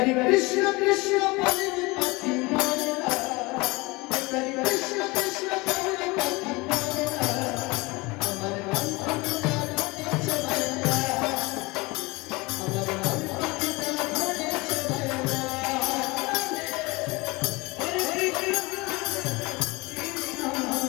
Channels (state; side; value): quieter; right; 24.0 dB